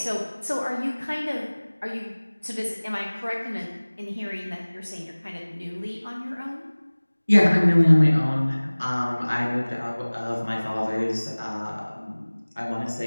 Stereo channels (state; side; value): inverted; both; correlation -1.00